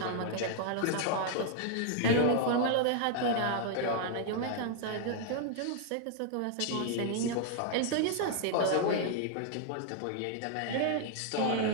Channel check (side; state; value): both; different; correlation 0.00